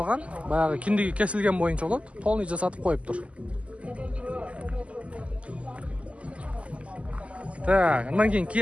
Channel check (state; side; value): late; left; 0.061 ms